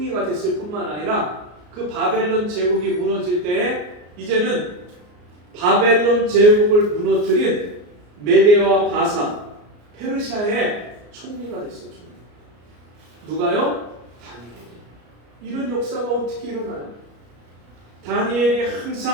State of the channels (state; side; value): late; left; 34 ms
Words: 됐을 뿐만 아니라 그 바벨론 제국이 무너질 때에 이제는 바벨론 제국을 무너뜨린 메대와 바사 페르시아의 총리가 됐어요. 누가요? 다니엘이. 이런 역사가 어떻게 일어나요? 다니엘이